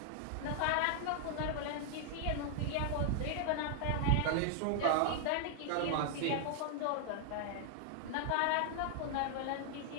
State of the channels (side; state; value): both; different; correlation 0.00